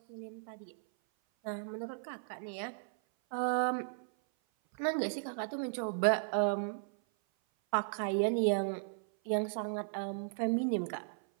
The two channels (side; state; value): left; silent; 54 dB below the other